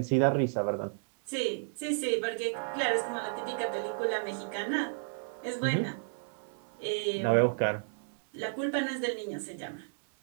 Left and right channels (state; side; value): silent; left; 56 dB below the other